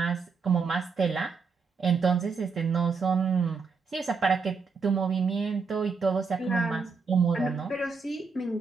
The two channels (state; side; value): quieter; left; 5.1 dB